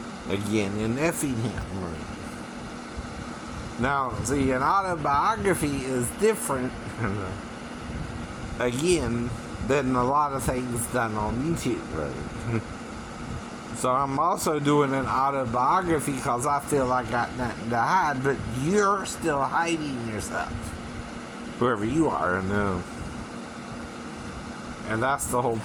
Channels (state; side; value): identical; both; correlation 1.00